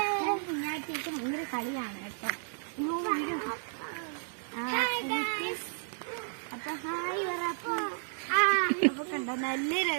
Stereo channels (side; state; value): left; silent; digital silence